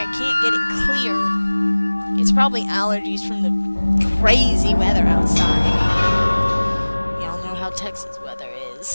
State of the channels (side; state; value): both; inverted; correlation -1.00